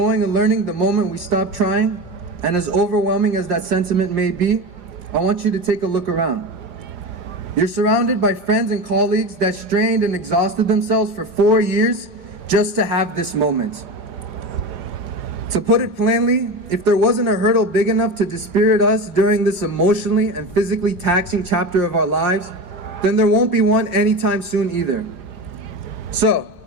and learning the moment we stop trying, and as overwhelming as that sentiment may be, I want you to take a look around. You're surrounded by friends and colleagues that strained and exhausted themselves for 4 years just to have this moment. To put it plainly, if there wasn't a hurdle big enough to dispirit us during this emotionally and physically taxing chapter of our lives, then there won't be one anytime soon either. So,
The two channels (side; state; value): left; late; 5.7 ms